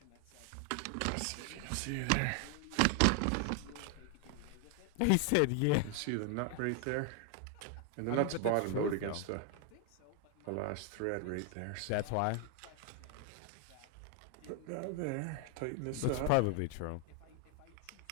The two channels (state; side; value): different; both; correlation 0.00